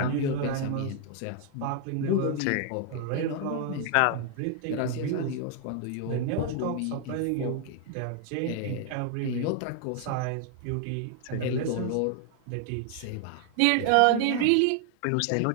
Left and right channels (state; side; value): different; both; correlation 0.00